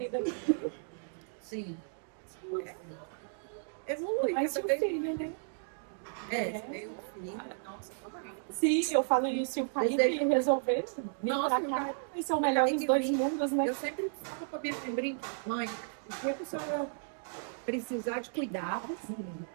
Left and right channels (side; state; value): left; silent; digital silence